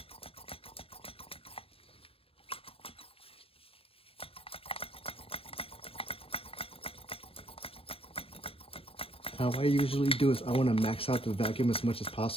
How I usually do is I want to max out the vacuum as much as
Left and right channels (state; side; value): late; right; 0.28 ms